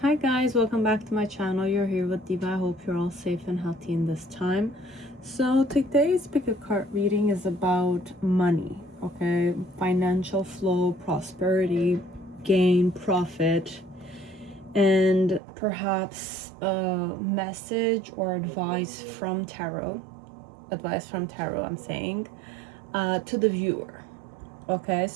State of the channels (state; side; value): drops out; left; at 15.4 s